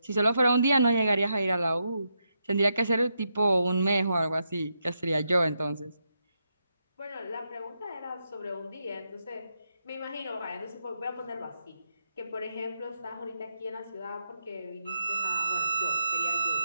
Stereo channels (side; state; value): both; inverted; correlation -0.82